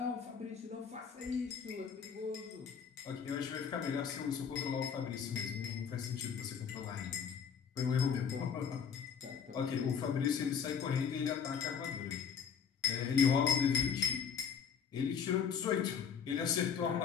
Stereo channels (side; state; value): right; quieter; 7.0 dB